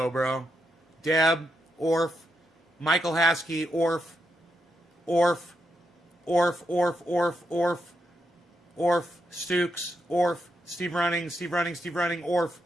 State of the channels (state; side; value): normal; both; correlation 0.82